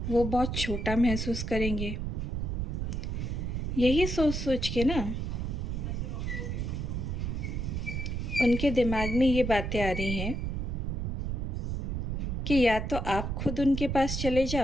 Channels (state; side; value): noise; right; rumble, 2 dB below the sound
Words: वो बहुत छोटा महसूस करेंगे। यही सोच सोच के ना उनके दिमाग में ये बातें आ रही हैं कि या तो आप खुद उनके पास चले